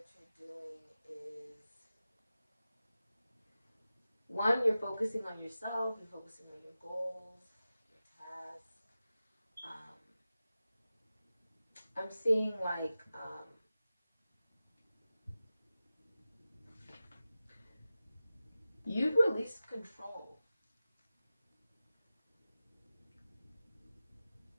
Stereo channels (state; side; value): inverted; both; correlation -0.95